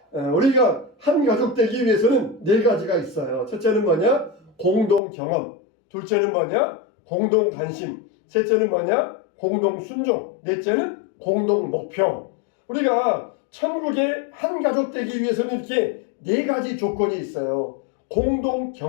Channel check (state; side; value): drops out; right; at 5.0 s